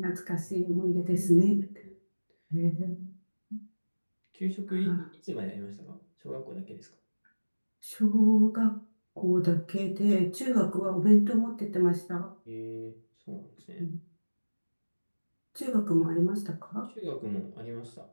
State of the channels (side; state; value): both; inverted; correlation -1.00